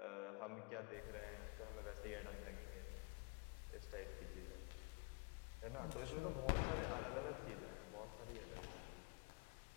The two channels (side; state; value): right; quieter; 29.2 dB